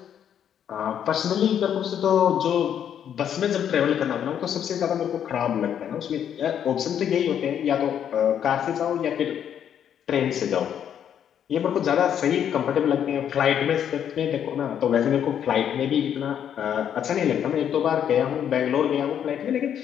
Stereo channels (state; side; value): quieter; right; 9.2 dB